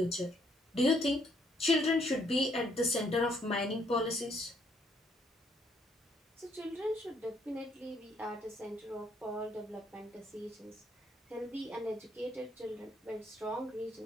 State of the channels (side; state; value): both; normal; correlation 0.70